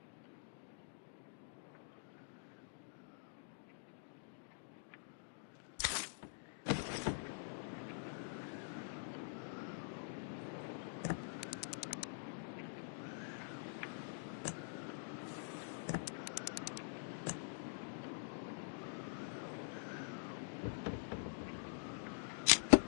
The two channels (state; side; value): silent; right; digital silence